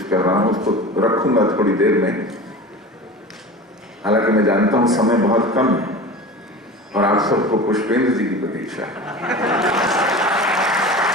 कर रहा हूं, उसको रखूंगा थोड़ी देर में। हालांकि मैं जानता हूं समय बहुत कम है और आप सबको पुष्पेंद्र जी की प्रतीक्षा है।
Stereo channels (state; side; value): normal; both; correlation 0.34